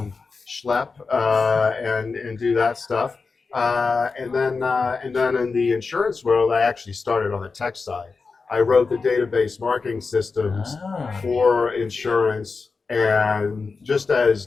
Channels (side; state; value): right; quieter; 4.5 dB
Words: schlep and do that stuff. And then in the insurance world, I actually started on the tech side. I wrote the database marketing systems for insurance, and just as